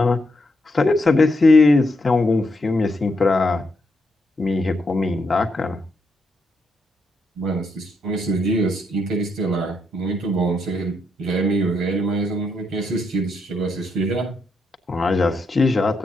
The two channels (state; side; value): normal; both; correlation 0.79